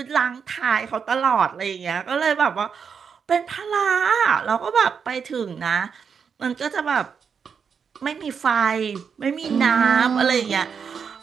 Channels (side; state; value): left; quieter; 6.5 dB